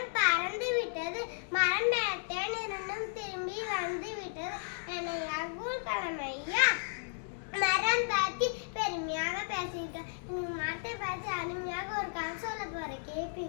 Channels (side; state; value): right; silent; digital silence